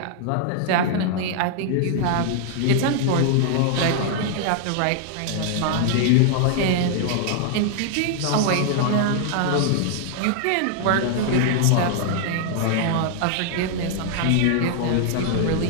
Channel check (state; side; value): different; both; correlation 0.00